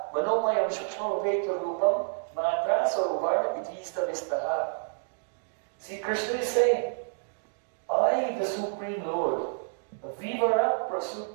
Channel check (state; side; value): silent; left; digital silence